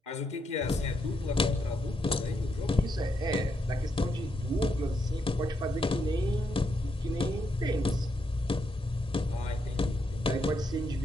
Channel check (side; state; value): both; normal; correlation 0.79